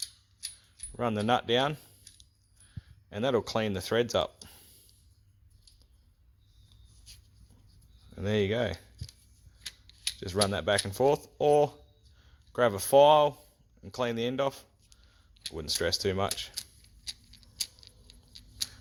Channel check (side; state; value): both; identical; correlation 1.00